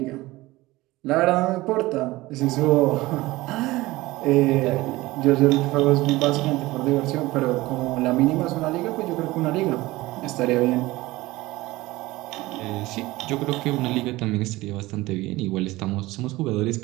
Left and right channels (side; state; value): left; quieter; 19.3 dB